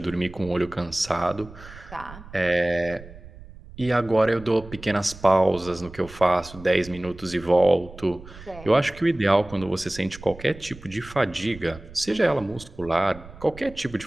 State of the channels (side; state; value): right; noise; rumble, 18 dB below the sound